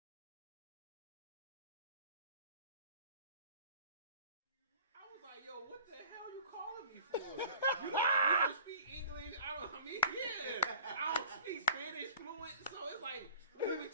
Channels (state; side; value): inverted; both; correlation -0.47